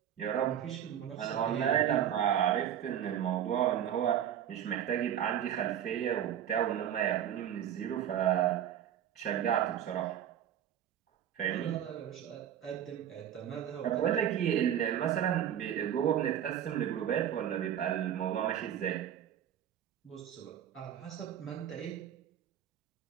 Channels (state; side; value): quieter; left; 10.1 dB